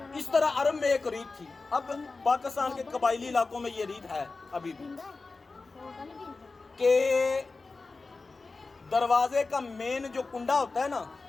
اس طرح عرب میں ایک ریت تھی اب پاکستان کے قبائلی علاقوں میں یہ ریت ہے ابھی بھی کہ دروازے کا مین جو کنڈا ہوتا ہے نا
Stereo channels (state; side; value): quieter; right; 3.8 dB